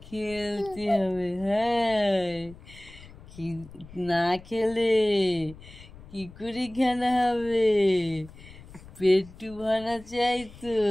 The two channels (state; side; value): noise; left; rumble, 19 dB below the sound